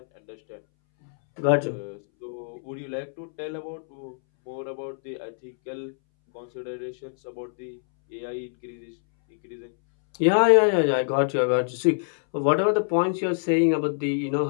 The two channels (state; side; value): silent; right; 61 dB below the other